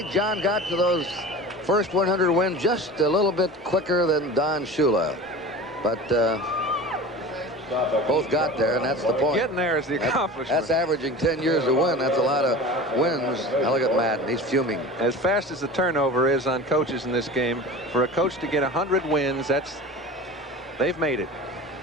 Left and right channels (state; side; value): normal; both; correlation 0.35